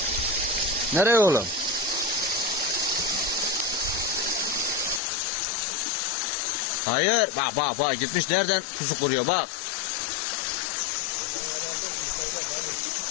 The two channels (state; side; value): drops out; right; at 5.0 s